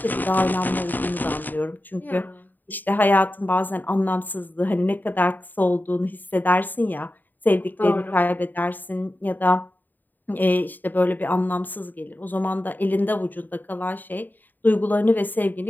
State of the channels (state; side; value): late; right; 0.089 ms